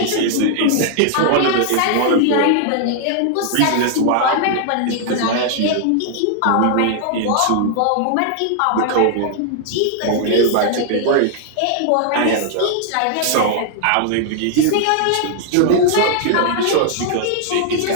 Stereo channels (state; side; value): different; both; correlation 0.00